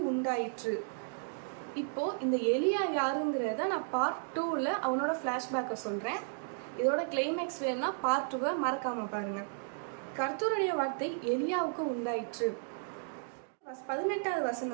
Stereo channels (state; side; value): silent; left; digital silence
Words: உண்டாயிற்று. இப்போ இந்த எலியா யாருங்கிறத நான் பார்ட் 2ல அவனோட ஃப்ளாஷ்பேக்கை சொல்கிறேன். இதோட கிளைமேக்ஸ் வேணும்னா பார்ட் 2வை மறக்காமல் பாருங்க. கர்த்தருடைய வார்த்தை எலியாவுக்கு உண்டாயிற்று. 18வது